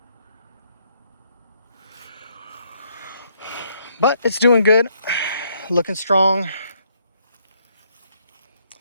But it's doing good, looking strong.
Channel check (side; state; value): both; inverted; correlation -0.70